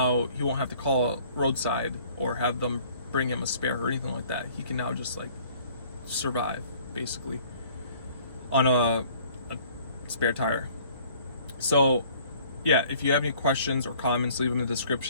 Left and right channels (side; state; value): both; inverted; correlation -0.55